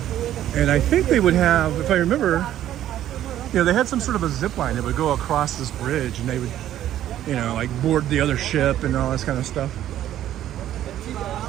And I think they would have, if I remember, you know, they had some sort of a zip line that would go across this bridge, and they would, you know, like board the other ship and all this kind of stuff.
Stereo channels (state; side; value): quieter; left; 12.1 dB